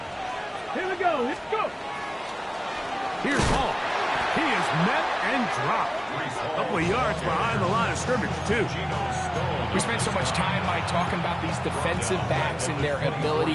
Here we go. Let's go. Here's Hall. He is met and dropped. A couple of yards behind the line of scrimmage, too. We spent so much time, Mike, talking about these defensive backs and their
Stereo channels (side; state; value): both; identical; correlation 1.00